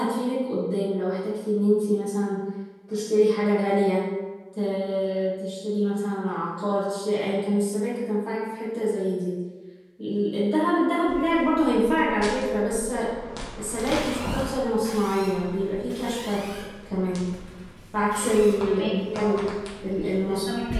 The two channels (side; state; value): both; identical; correlation 1.00